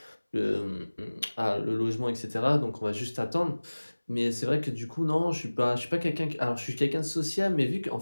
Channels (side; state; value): both; inverted; correlation -1.00